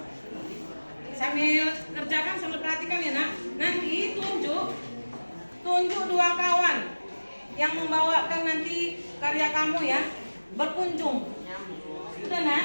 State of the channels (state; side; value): inverted; both; correlation -1.00